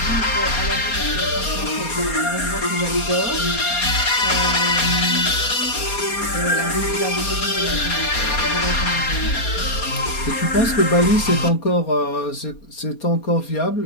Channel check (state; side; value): late; right; 4.3 ms